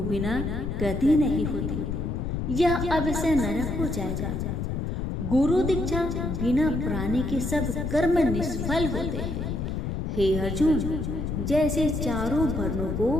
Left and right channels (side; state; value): left; noise; rumble, 2 dB below the sound